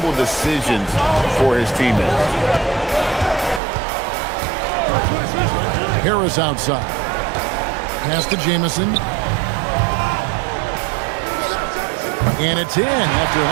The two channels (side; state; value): left; drops out; at 3.6 s